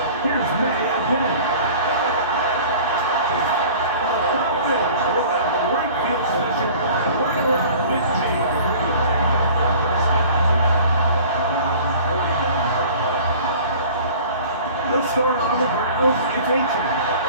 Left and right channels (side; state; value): both; inverted; correlation -0.45